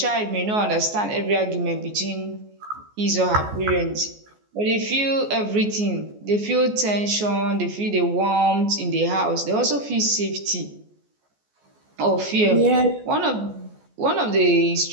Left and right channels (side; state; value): left; late; 14 ms